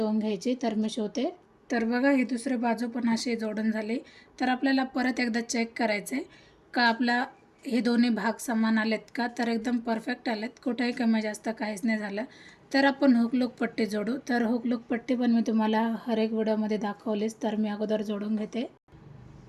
घ्यायची. तर मी शिवते. तर बघा ही दुसरी बाजू पण अशी जोडून झाली. तर आपल्याला परत एकदा चेक करायचं आहे का आपला हे दोन्ही भाग समान आलेत का. तर एकदम परफेक्ट आलेत, कुठेही कमी जास्त काहीच नाही झालं. तर आपण हुकलूक पट्टी जोडू. तर हुकलूक पट्टी पण मी तुम्हाला हर एक व्हिडिओमध्ये दाखवलीच. तर मी अगोदर जोडून घेते.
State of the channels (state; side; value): identical; both; correlation 1.00